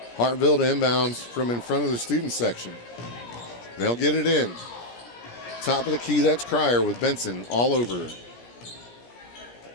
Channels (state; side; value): late; right; 17 ms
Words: Hartville to inbounds from in front of the student section. They'll get it in. Top of the key, that's Cryer with Benson all over.